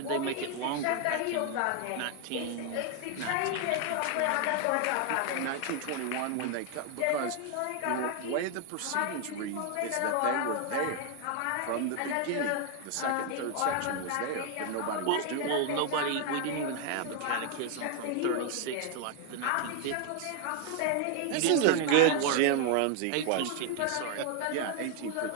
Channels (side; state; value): both; different; correlation 0.00